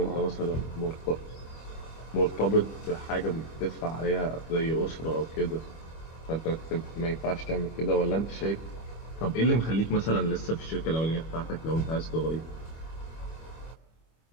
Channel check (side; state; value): right; late; 25 ms